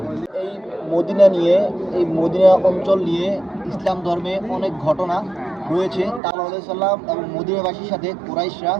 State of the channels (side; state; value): left; drops out; at 6.2 s